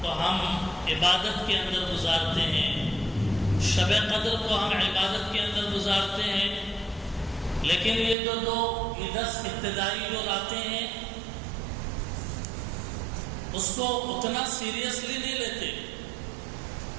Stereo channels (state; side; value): drops out; left; at 8.2 s